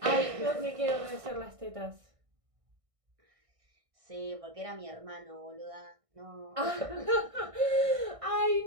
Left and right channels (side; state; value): left; late; 1.6 ms